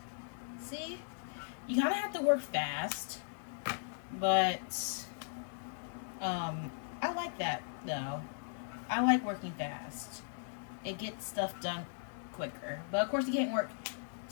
See? You kind of have to work fast. But I like that though. I like working fast. It gets stuff done quicker. But of course you can't work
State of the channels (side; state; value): right; silent; digital silence